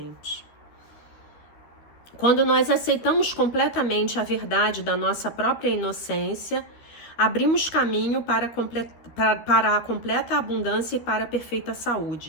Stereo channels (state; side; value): late; right; 13 ms